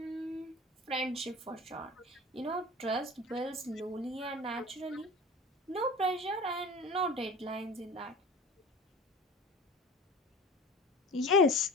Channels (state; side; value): normal; both; correlation 0.38